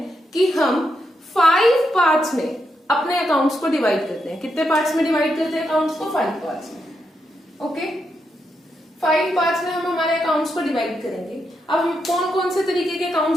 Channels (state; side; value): normal; both; correlation 0.83